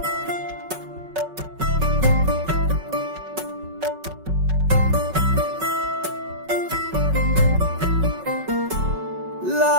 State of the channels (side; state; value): left; late; 5.3 ms